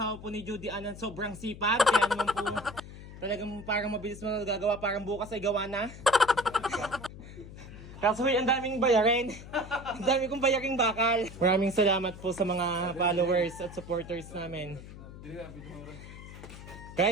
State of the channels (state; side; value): noise; left; hum, 14 dB below the sound